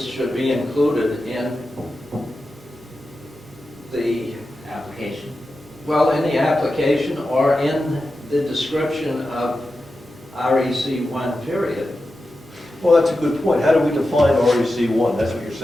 should be included in the, application. in the application or in the description of REC 1 period. Well, that's a good point. How do we define REC 1? That's what you're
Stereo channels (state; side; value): noise; right; hum, 25 dB below the sound